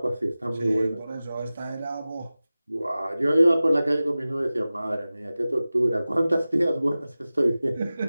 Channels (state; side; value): inverted; both; correlation -0.96